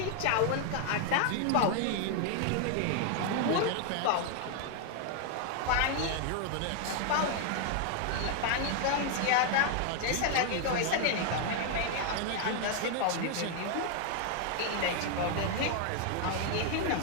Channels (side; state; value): both; different; correlation 0.00